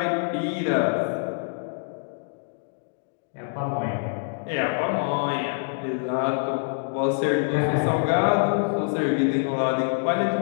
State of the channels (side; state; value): right; silent; digital silence